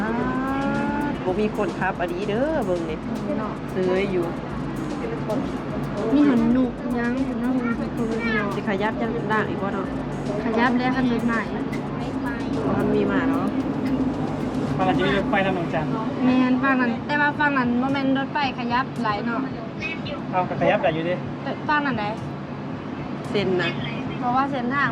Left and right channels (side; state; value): both; identical; correlation 1.00